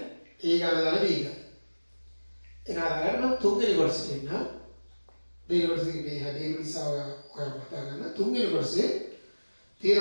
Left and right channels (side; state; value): both; inverted; correlation -1.00